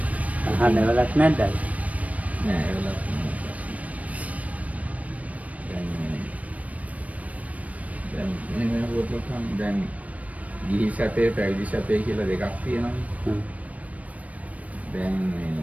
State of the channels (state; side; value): late; left; 0.068 ms